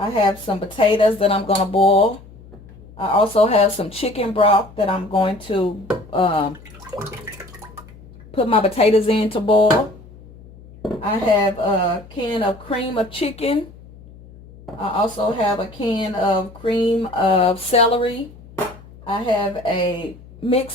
have some potatoes that I'm going to boil. I also have some chicken broth that I'm going to put my potatoes in to boil. I have a can of cream of chicken. I also have a can of cream of celery. I have a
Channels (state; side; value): noise; left; hum, 21 dB below the sound